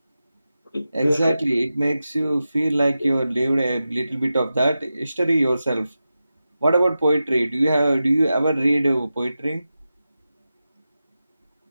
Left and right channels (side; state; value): both; inverted; correlation -0.92